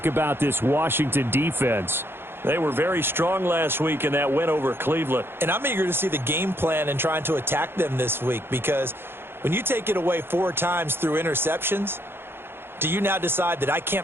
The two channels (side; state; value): left; late; 0.11 ms